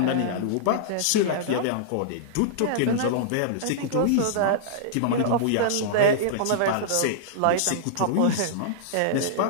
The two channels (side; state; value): both; different; correlation -0.02